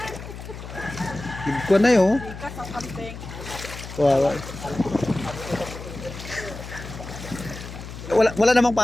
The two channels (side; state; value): left; noise; hum, 11 dB below the sound